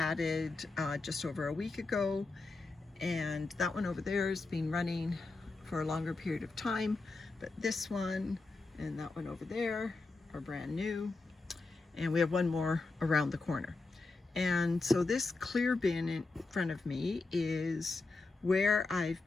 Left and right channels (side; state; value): right; quieter; 3.6 dB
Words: just over a week ago, and that one over there has been running for a longer period of time, but this one and that one over there are brand new, and we have one more around the corner. And so this clear bin in front of me is where I've